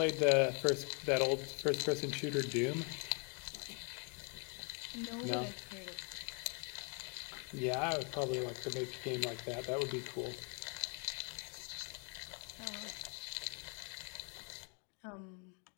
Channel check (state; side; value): quieter; right; 36.4 dB